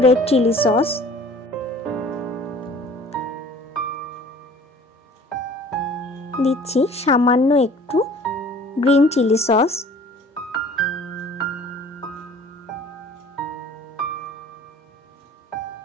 রেড চিলি সস, দিচ্ছি সামান্য একটু গ্রিন চিলি সস,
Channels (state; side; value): normal; both; correlation 0.49